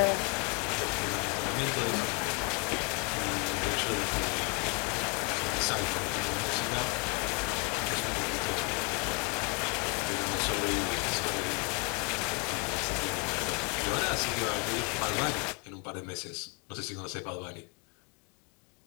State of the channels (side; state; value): right; quieter; 33.1 dB